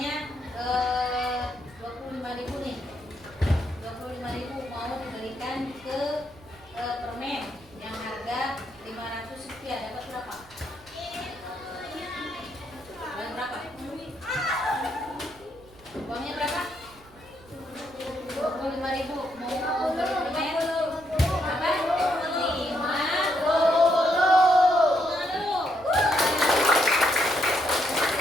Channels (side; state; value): right; noise; rumble, 25 dB below the sound